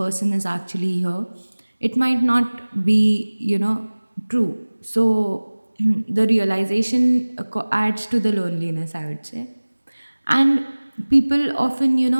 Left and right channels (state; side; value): inverted; both; correlation -1.00